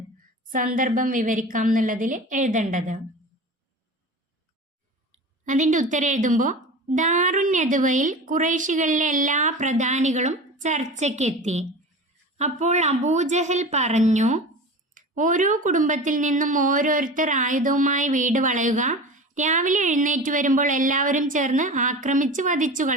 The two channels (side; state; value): both; normal; correlation 0.33